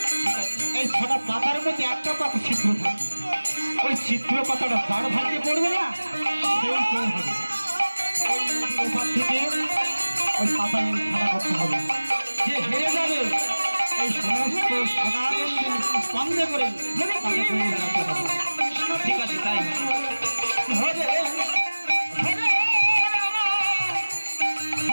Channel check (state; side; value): inverted; both; correlation -1.00